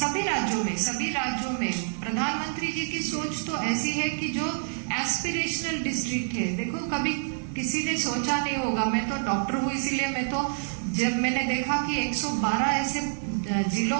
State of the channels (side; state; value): left; silent; digital silence